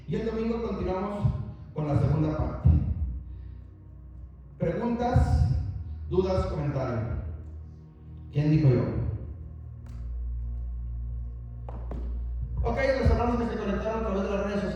Y el domingo continuamos con la segunda parte. Preguntas, dudas, comentarios. ¿Quién dijo yo? Ok, los hermanos que se conectaron a través de las redes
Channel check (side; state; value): both; identical; correlation 1.00